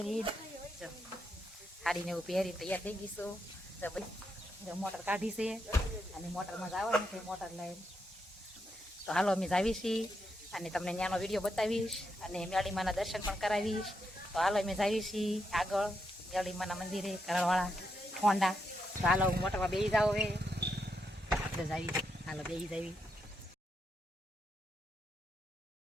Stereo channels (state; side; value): normal; both; correlation 0.82